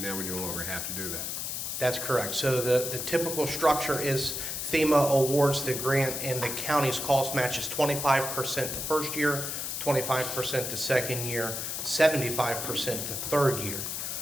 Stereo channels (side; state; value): left; noise; hiss, 4 dB below the sound